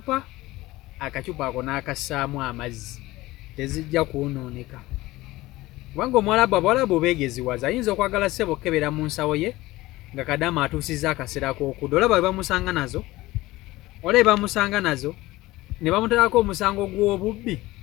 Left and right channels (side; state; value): right; quieter; 18.6 dB